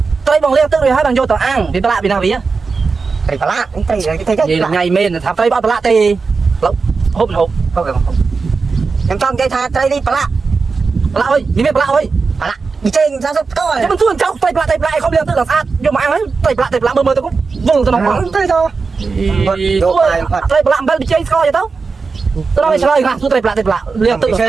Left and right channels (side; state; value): left; quieter; 4.6 dB